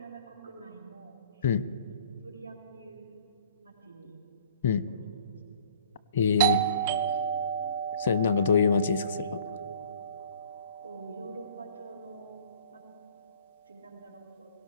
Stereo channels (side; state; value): both; inverted; correlation -0.50